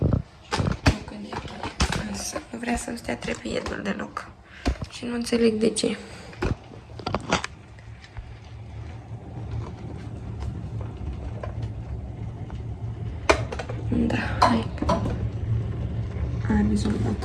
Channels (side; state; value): both; identical; correlation 1.00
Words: Nu vrea să stea trepietul deloc. Și nu înțeleg de ce. Da, hai. Am